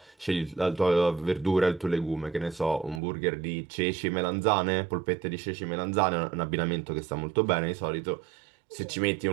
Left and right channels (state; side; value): drops out; left; at 3.0 s